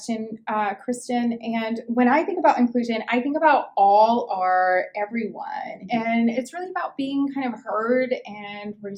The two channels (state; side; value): identical; both; correlation 1.00